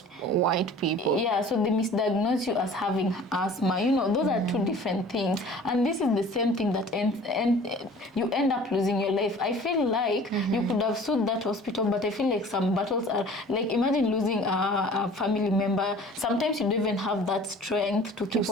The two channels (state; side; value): normal; both; correlation 0.46